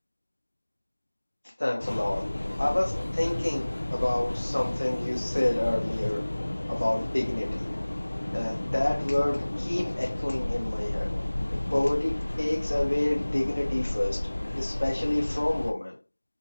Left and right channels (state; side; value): inverted; both; correlation -1.00